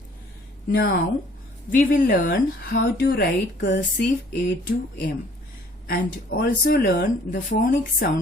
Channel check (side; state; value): both; normal; correlation 0.57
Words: Now we will learn how to write cursive A to M and also learn the phonic